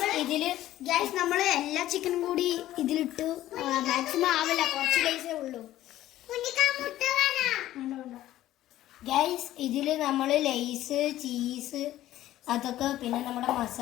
ഇതില് ഗ്യാസ് നമ്മള് എല്ലാ ചിക്കനും കൂടി ഇതിലിട്ടു. മാക്സിമം ആവില്ല, കുറച്ച് ലേസേ ഉള്ളൂ. ഗൈസ് ഇതില് നമ്മള് ലേസ്, ചീസ്, അതൊക്കെ പിന്നെ നമ്മുടെ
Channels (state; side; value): quieter; right; 14.1 dB